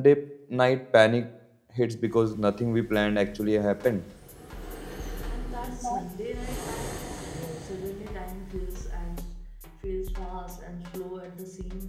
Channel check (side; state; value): both; identical; correlation 1.00